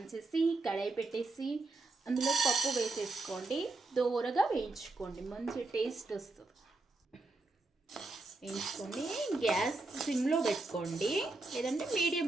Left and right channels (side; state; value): left; quieter; 3.3 dB